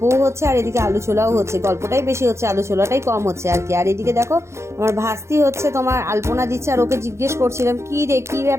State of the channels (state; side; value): late; left; 0.13 ms